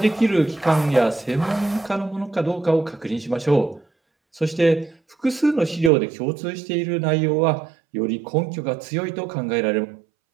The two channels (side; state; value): left; drops out; at 5.9 s